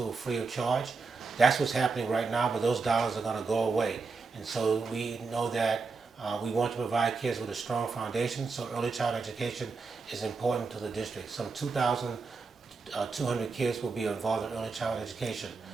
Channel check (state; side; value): quieter; left; 4.4 dB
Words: free of charge. That's what's happening right now, but those dollars are going to go away. And so we know that we want to provide kids with a strong foundation, so early childhood education is important to the district. Some 2,200 kids will be involved in early childhood education.